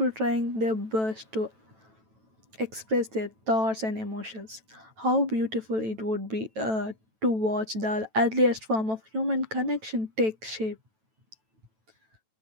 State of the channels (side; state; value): left; late; 9.1 ms